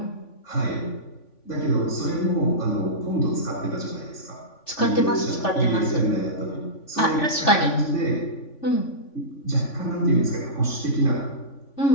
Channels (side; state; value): right; late; 3.5 ms